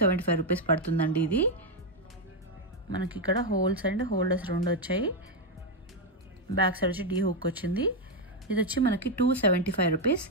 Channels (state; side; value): normal; both; correlation 0.04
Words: రూపీస్ పడుతుందండి. ఇది మనకి ఇక్కడ హోల్స్ అండ్ హోల్డర్స్ 2 వచ్చాయి. బ్యాక్ సైడ్ వచ్చి డీ హుక్ వచ్చింది. ఇది వచ్చి మనకి 275 రూపీస్.